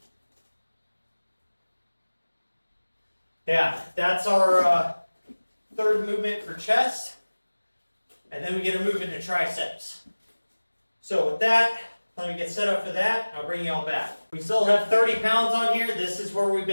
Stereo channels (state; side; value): inverted; both; correlation -1.00